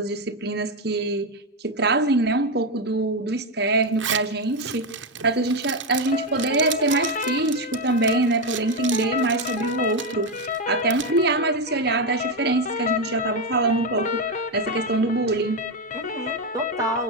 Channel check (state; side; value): normal; both; correlation 0.08